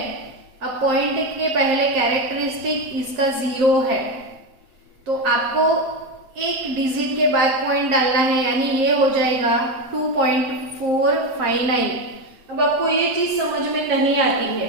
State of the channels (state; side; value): late; left; 7.6 ms